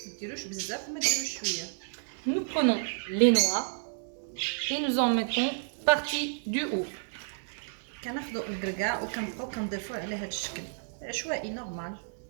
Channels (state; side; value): silent; left; digital silence